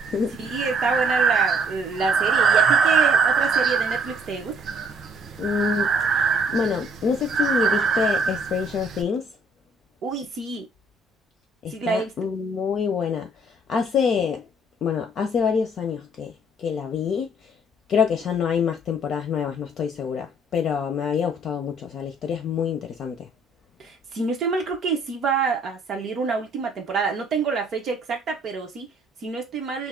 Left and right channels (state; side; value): normal; both; correlation 0.61